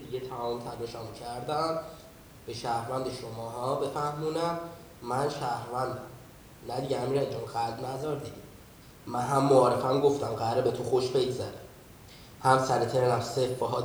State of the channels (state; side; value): identical; both; correlation 1.00